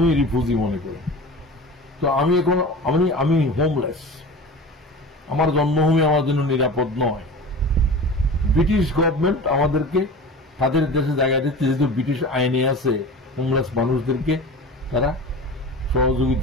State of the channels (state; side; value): normal; both; correlation 0.35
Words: রিফিউজি মনে করি। তো আমি এখন আমি হোমলেস, আমার জন্মভূমি আমার জন্য নিরাপদ নয়। ব্রিটিশ গভর্নমেন্ট আমাদেরকে তাদের দেশে জায়গা দিচ্ছে, যেহেতু ব্রিটিশ আইনে আছে হোমলেস মানুষদেরকে তারা